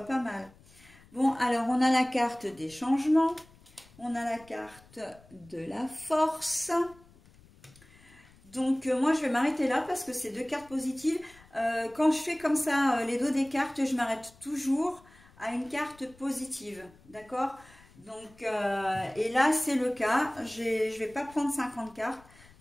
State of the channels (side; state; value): left; noise; rumble, 26 dB below the sound